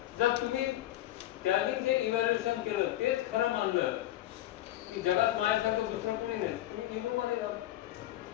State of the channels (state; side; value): quieter; right; 14.6 dB